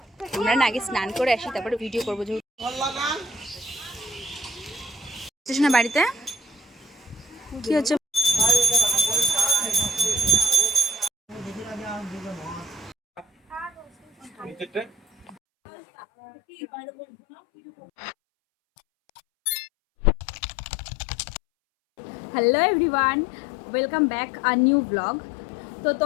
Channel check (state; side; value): drops out; right; at 15.4 s